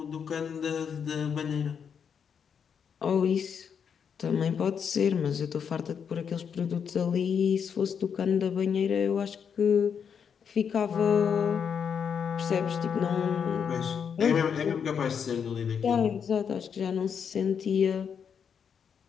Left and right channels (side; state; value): right; quieter; 7.2 dB